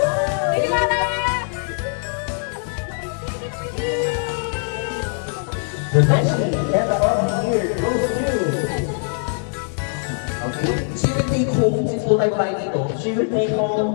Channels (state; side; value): silent; right; 64 dB below the other